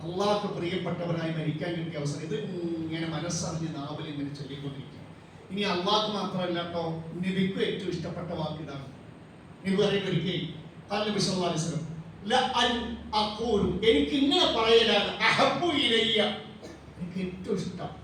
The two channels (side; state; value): both; identical; correlation 1.00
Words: അള്ളാഹ്ക്ക് പ്രിയപ്പെട്ടവനായി മരിക്കാൻ കിട്ടിയ അവസരം. ഇത് ഇങ്ങനെ മനസ്സറിഞ്ഞ് നാവിൽ ഇങ്ങനെ ചൊല്ലിക്കൊണ്ടിരിക്കുക. ഇനി അള്ളാഹ്ക്ക് മാത്രമല്ല കേട്ടോ, നബിക്ക് ഏറ്റവും ഇഷ്ടപ്പെട്ട വാക്ക് ഇതാണ്. നബി പറയുന്ന ഒരിക്കൽ നബി സല്ലല്ലാഹു അലൈഹി വസല്ലം ലഅൻ അഖൂലു, എനിക്ക് ഇങ്ങനെ പറയലാണ്, അഹബ്ബു ഇലയ്യ, എനിക്ക് ഏറ്റവും ഇഷ്ടം